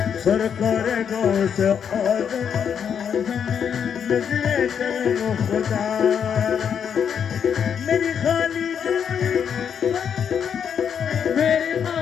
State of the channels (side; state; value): right; quieter; 7.7 dB